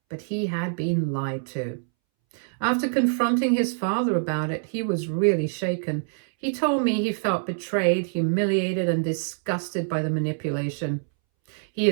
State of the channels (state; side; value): silent; left; 61 dB below the other